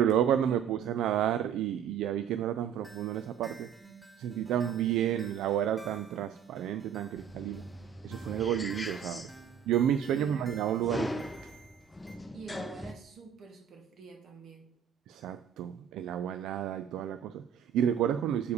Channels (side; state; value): left; quieter; 8.8 dB